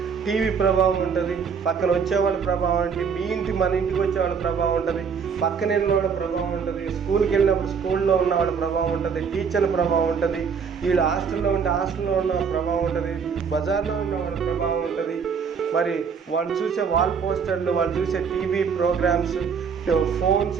టీవీ ప్రభావం ఉంటుంది, పక్కన వచ్చేవాళ్ళ ప్రభావం ఉంటుంది, మన ఇంటికి వచ్చేవాళ్ళ ప్రభావం ఉంటుంది, పక్కన వెళ్ళిన వాళ్ళ ప్రభావం ఉంటుంది, స్కూల్కి వెళ్ళినప్పుడు స్కూల్లో ఉన్న వాళ్ళ ప్రభావం ఉంటుంది, టీచర్ల ప్రభావం ఉంటుంది, వీళ్ళు హాస్టల్లో ఉంటే హాస్టల్లో ఉన్న ప్రభావం ఉంటుంది, బజార్లో ఉన్న వాళ్ళ ప్రభావం ఉంటుంది, మరి వాళ్ళు చూసే వాల్ పోస్టర్లు, వాళ్ళు చూసే టీవీ ప్రోగ్రామ్స్, ఫోన్స్,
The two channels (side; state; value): left; quieter; 6.2 dB